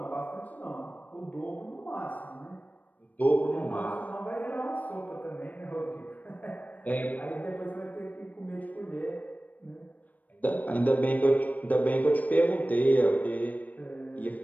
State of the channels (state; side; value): late; right; 0.076 ms